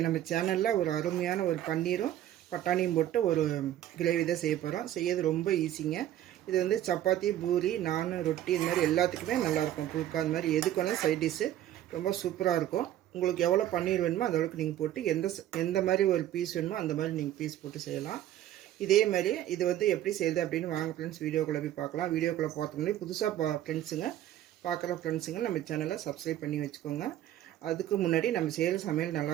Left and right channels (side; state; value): left; quieter; 12.4 dB